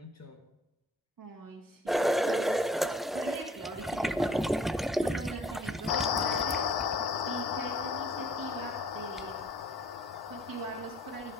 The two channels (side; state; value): both; normal; correlation 0.57